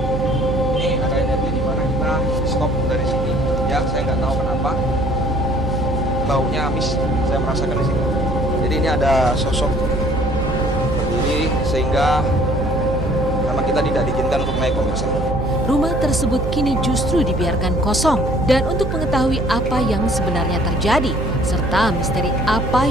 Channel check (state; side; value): noise; right; hum, 3 dB below the sound